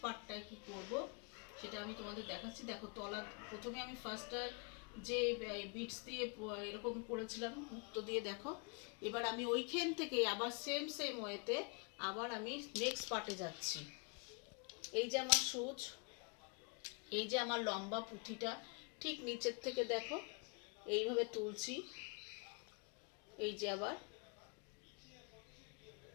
পার্টটায় কী করব সেটা আমি তোমাদের দেখাচ্ছি। দেখো তলা, প্রথমে আমি ফার্স্টটা যে বিটস দিয়ে এরকম করেছিলাম মুক্তো দিয়ে, দেখো এবার আমি ওইখান থেকে আবার সেম ওয়েতে আবার আমি নেক্সট পার্টে যাচ্ছি। এই যে আমার সুচ, এই যে আমার লম্বা পুঁথিটা, ঠিক নিচের থেকে দেখো এইভাবে তুলছি। এই যে আবার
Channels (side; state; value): right; quieter; 35.5 dB